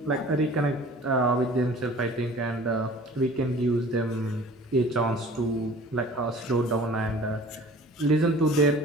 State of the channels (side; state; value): both; normal; correlation 0.46